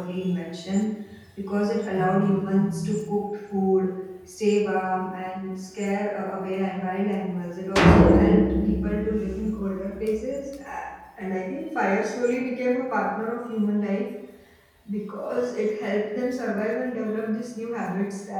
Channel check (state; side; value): identical; both; correlation 1.00